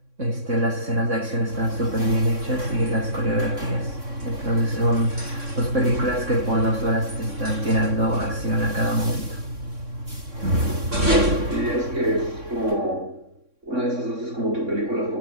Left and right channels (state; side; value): late; left; 3.6 ms